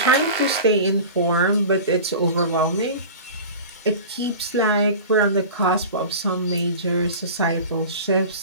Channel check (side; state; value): both; inverted; correlation -0.35